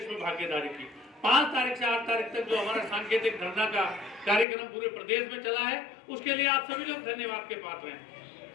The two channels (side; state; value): right; drops out; at 4.5 s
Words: भागीदारी की। 5 तारीख से 8 तारीख तक जो हमारा सांकेतिक धरना का कार्यक्रम पूरे प्रदेश में चला है, उसके लिए आप सभी लोग धन्यवाद के पात्र हैं।